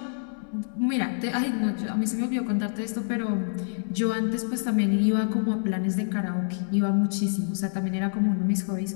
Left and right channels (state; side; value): silent; right; 60 dB below the other